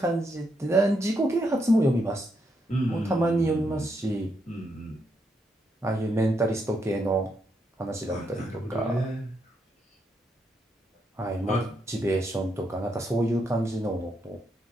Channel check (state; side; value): normal; both; correlation 0.79